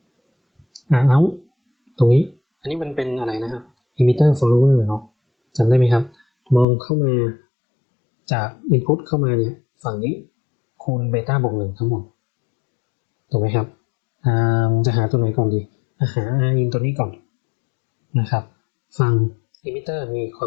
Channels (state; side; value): drops out; right; at 6.7 s